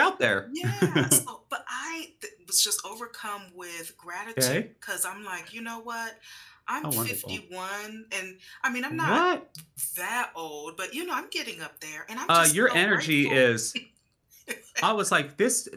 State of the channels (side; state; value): both; identical; correlation 1.00